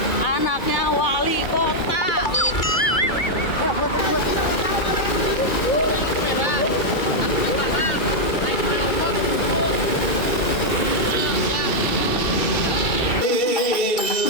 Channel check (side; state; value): right; late; 2.3 ms